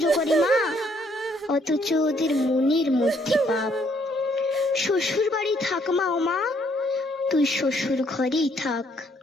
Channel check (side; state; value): both; normal; correlation 0.68